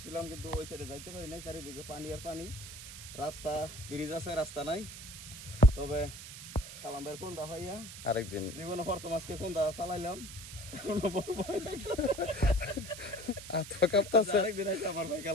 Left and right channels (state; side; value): noise; right; hiss, 12 dB below the sound